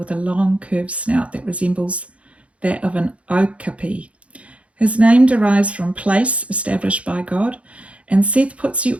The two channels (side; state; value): left; late; 0.063 ms